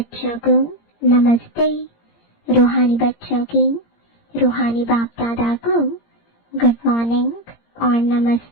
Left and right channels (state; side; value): late; right; 17 ms